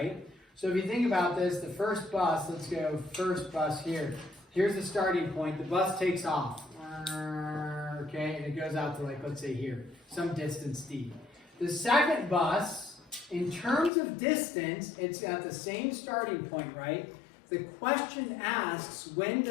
So if you think about this, the first bus, let's go first bus here. Here's the starting point. The bus takes off. Okay, and it goes out to, like, let's say here, some distance D. The second bus, in terms of distance, it's at the same starting point, right? The question asks, when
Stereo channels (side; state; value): right; drops out; at 13.9 s